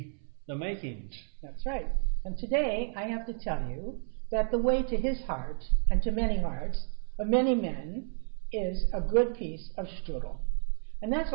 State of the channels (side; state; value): left; silent; 57 dB below the other